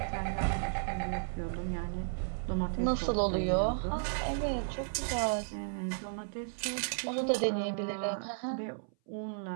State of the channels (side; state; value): left; silent; 55 dB below the other